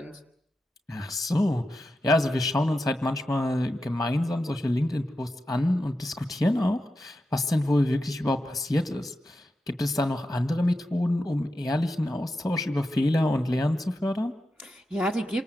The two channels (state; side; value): normal; both; correlation 0.90